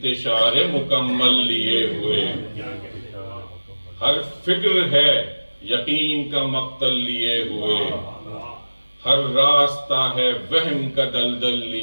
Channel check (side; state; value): both; inverted; correlation -1.00